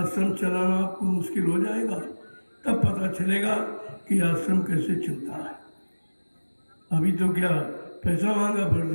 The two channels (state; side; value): inverted; both; correlation -1.00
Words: चलाना आपको मुश्किल हो जाएगा, तब पता चलेगा कि आश्रम कैसे चलता है। अभी तो क्या पैसा मांगा,